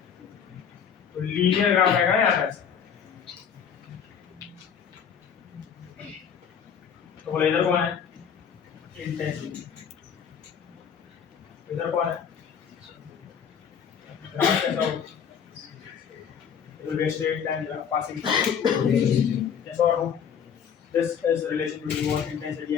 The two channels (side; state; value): right; quieter; 7.6 dB